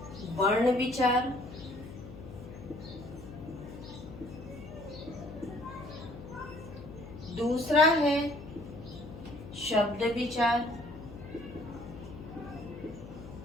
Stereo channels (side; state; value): left; noise; hum, 13 dB below the sound